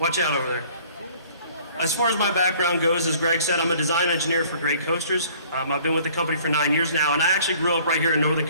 out over there. As far as my background goes, as Greg said, I'm a design engineer for Great Coasters. I've been with the company for 9 years now, and I actually grew up right here in northern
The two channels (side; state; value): both; inverted; correlation -0.54